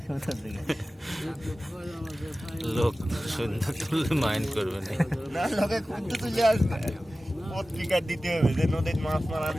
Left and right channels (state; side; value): normal; both; correlation 0.96